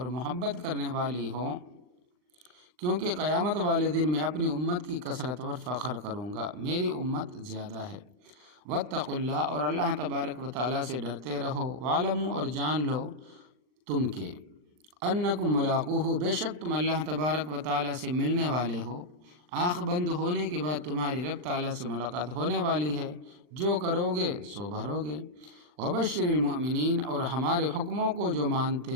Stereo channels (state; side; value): late; left; 39 ms